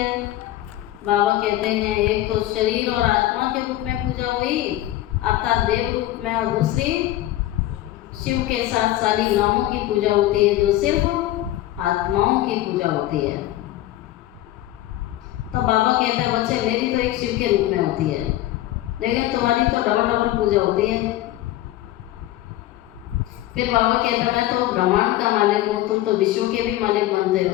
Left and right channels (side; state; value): right; quieter; 14.9 dB